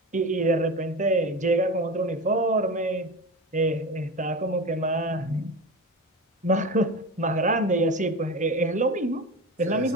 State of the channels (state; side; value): normal; both; correlation 0.26